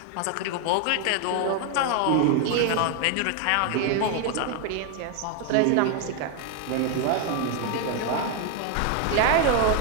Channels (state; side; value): different; both; correlation 0.01